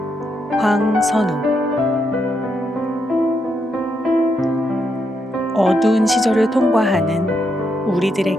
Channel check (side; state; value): both; normal; correlation 0.80